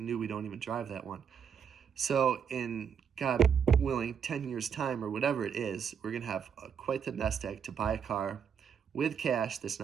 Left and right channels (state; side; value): quieter; left; 7.5 dB